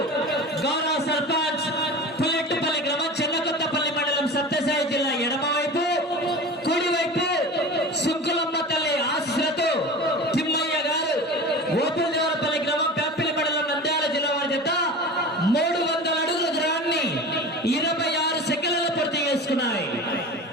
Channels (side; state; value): both; normal; correlation 0.34